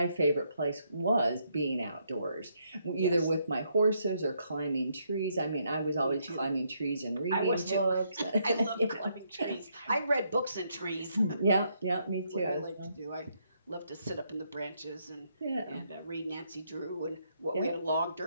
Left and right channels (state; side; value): inverted; both; correlation -0.75